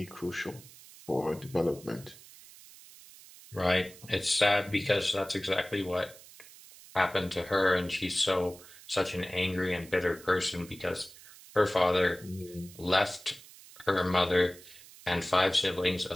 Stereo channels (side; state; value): right; noise; hiss, 20 dB below the sound